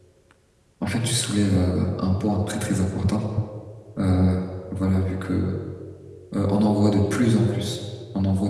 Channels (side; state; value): both; identical; correlation 1.00